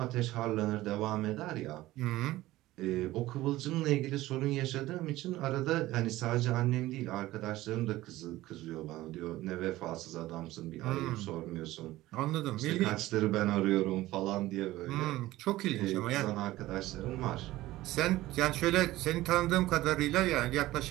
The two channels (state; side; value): quieter; left; 16.9 dB